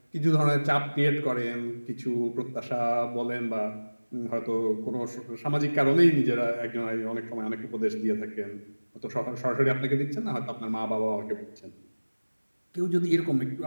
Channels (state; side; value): inverted; both; correlation -1.00